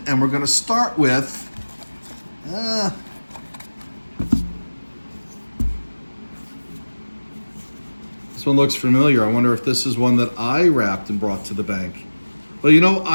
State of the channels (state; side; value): inverted; both; correlation -1.00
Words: and we're going to start with this one looks familiar. I wonder if this is one that I wrapped and brought to the bank. Well, you know,